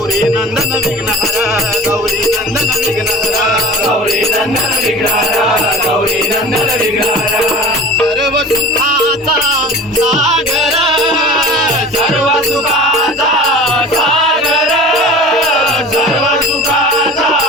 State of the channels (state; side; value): normal; both; correlation 0.38